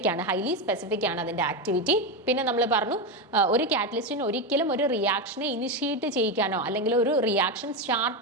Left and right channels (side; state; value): both; normal; correlation 0.12